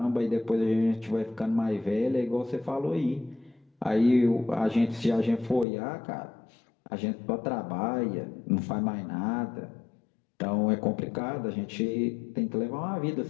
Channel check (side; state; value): right; drops out; at 5.7 s